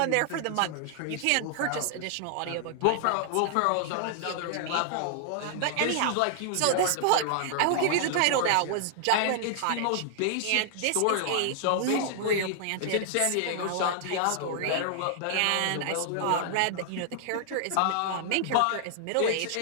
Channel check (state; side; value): different; both; correlation -0.01